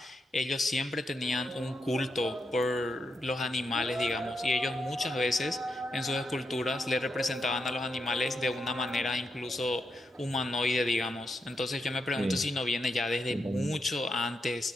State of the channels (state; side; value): normal; both; correlation 0.84